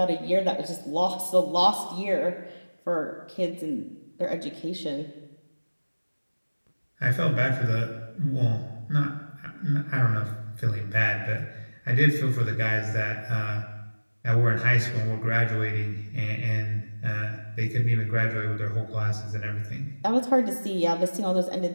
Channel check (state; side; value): inverted; both; correlation -1.00